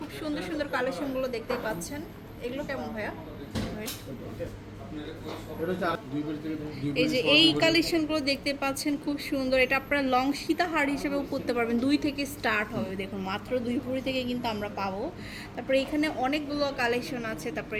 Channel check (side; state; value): both; identical; correlation 1.00